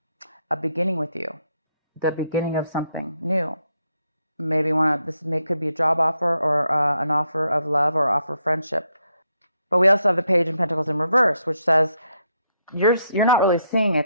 A beginning with you. The beginning of something new. Maybe could be a job offer or an offer of love or offer of friendship. But we also have the Page of Pentacles in reverse, which says you're not really seeing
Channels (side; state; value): both; inverted; correlation -0.77